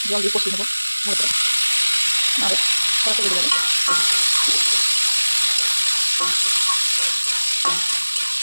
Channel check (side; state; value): both; inverted; correlation -1.00